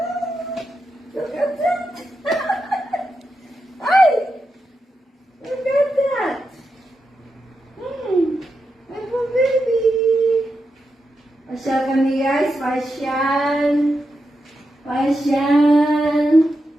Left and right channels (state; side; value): normal; both; correlation 0.87